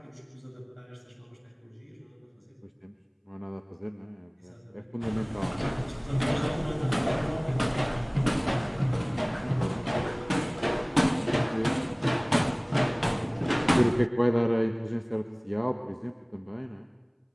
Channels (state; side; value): identical; both; correlation 1.00